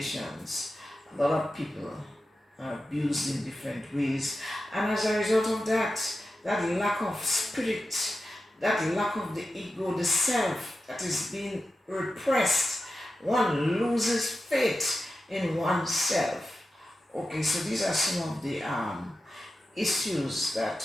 a lot of people are abused in different ways, and as a result of that lack of spirit, that lack of the ego, the self that is being repressed, one loses faith in oneself. Okay, so these are some of the issues that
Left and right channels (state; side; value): normal; both; correlation 0.92